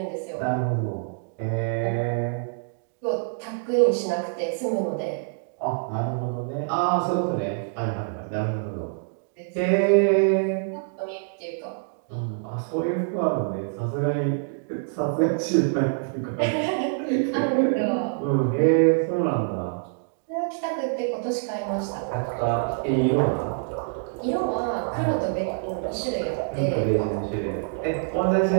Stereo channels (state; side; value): silent; left; digital silence